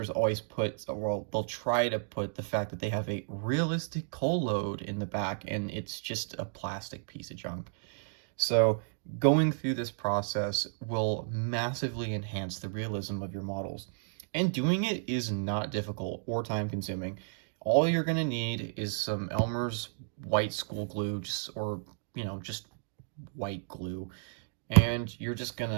always put, well, they'll try to put the fact that they have a realistic coal load in the back, and it's just a plastic piece of junk. So going through this process will massively enhance the realism of your models. And doing it is not difficult or time consuming. All you're going to need is some Elmer's white school glue, or, you know, just white glue. And you're just going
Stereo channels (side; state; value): left; silent; digital silence